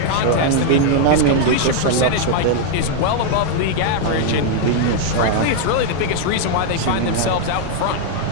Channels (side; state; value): both; different; correlation 0.00